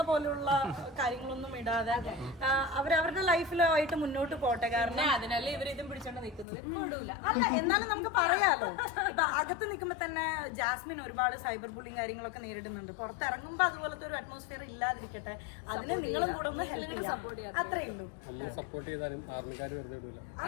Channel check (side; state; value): right; drops out; at 6.5 s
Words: പോലുള്ള കാര്യങ്ങളൊന്നും ഇടാതെ അവരവരുടെ ലൈഫിലായിട്ട് മുന്നോട്ട് പോട്ടെ. കാരണം അതിനല്ലേ ഇവരിതും പിടിച്ചോണ്ട് നിൽക്കുന്നത്. അല്ല, എന്നാലും നമുക്ക് പറയാലോ. ഇപ്പൊ അകത്ത് നിൽക്കുമ്പോ തന്നെ ജാസ്മിൻ ഒരുപാട് സൈബർ ബുള്ളിങ് കാര്യങ്ങളൊക്കെ നേരിടുന്നുണ്ട്. പുറത്തിറങ്ങുമ്പോ അതുപോലത്തെ ഒരു അറ്റ്മോസ്ഫിയർ ഇല്ലാതിരിക്കട്ടെ. അതിന് നിങ്ങളും കൂടെ ഒന്ന് ഹെൽപ്പ് ചെയ്യാം. അത്രേ ഉള്ളൂ.